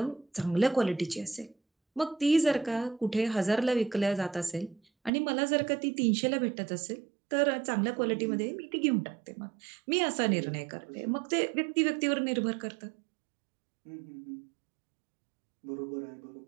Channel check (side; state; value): left; drops out; at 5.1 s